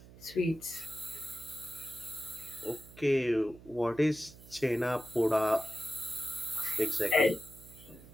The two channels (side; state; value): right; noise; hum, 19 dB below the sound